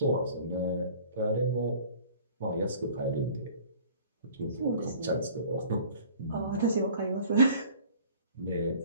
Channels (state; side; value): inverted; both; correlation -0.49